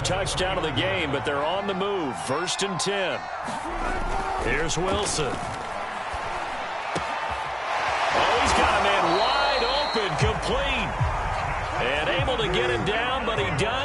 touchdown of the game, but they're on the move. 1st and 10. Here's Wilson. Oh, he's got a man wide open, complete. And able to get him down, but he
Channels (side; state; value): both; identical; correlation 1.00